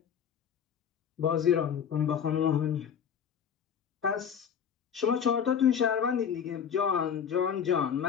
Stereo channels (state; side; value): quieter; right; 7.9 dB